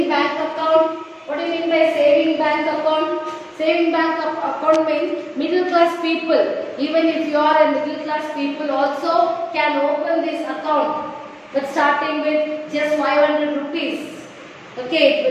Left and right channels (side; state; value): both; identical; correlation 1.00